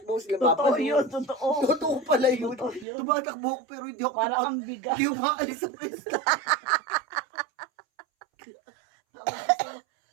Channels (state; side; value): drops out; left; at 2.9 s